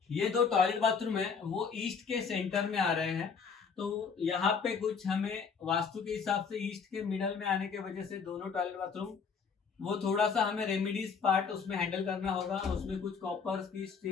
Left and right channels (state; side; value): quieter; right; 5.9 dB